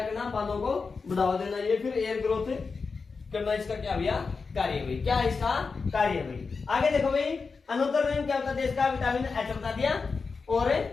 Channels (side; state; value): right; quieter; 4.7 dB